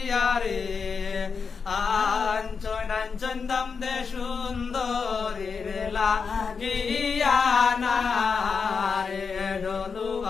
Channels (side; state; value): right; quieter; 5.5 dB